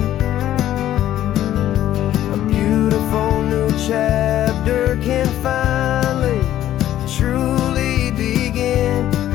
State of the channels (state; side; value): quieter; right; 12.6 dB